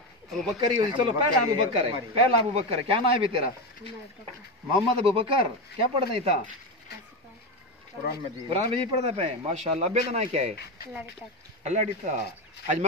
ابو بکر ہی اسی چلو پہلا ابو بکر ہے پہلا ابو بکر ہے کیا نام ہے بھی تیرا محمد ابو بکر کیا پڑھتا تھا قرآن مجید پڑھتا پہ ماشاءاللہ ابے کا نام کیا ہے اللہ ڈیتا آج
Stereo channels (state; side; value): normal; both; correlation 0.15